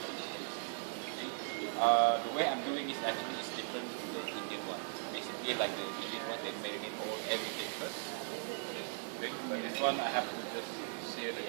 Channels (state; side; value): silent; left; 52 dB below the other